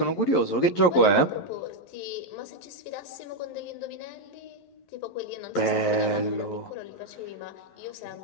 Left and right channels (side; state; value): right; late; 11 ms